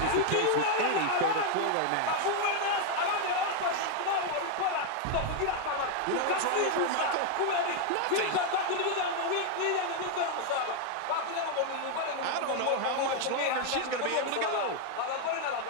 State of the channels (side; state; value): both; different; correlation 0.01